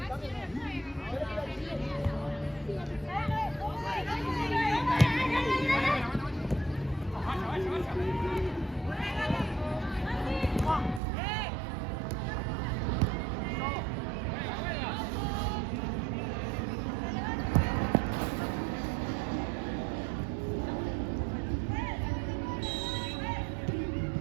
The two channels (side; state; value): left; drops out; at 11.0 s